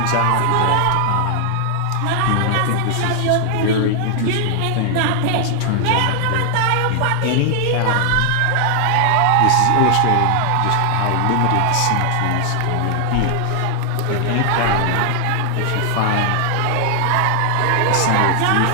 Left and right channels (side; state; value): both; different; correlation 0.00